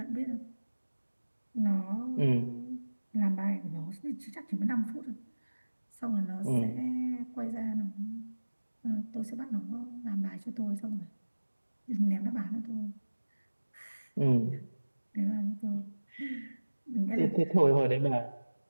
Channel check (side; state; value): both; inverted; correlation -1.00